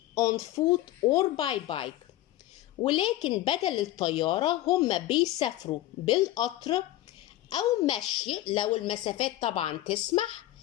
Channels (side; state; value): right; quieter; 15.3 dB